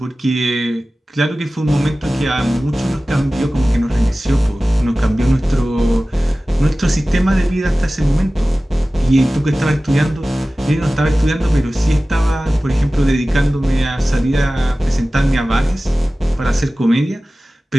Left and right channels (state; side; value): normal; both; correlation 0.96